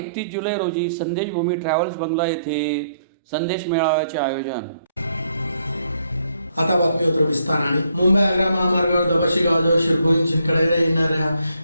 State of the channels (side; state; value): both; inverted; correlation -0.73